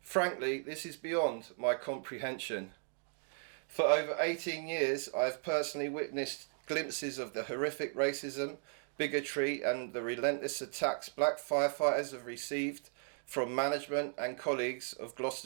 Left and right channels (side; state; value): left; silent; 54 dB below the other